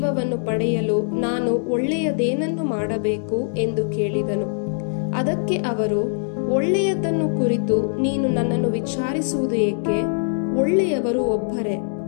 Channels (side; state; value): right; silent; digital silence